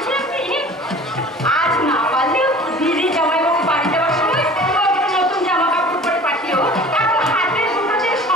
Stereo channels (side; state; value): both; normal; correlation 0.44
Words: কি, আজ না পারলেও দিদি জামাইবাবু বাড়ি যাওয়ার সময় নতুন জামা কাপড় পরে পাঠিও। এখন হাতের দুটোদের